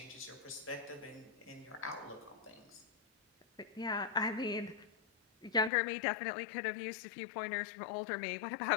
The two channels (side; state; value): right; drops out; at 5.7 s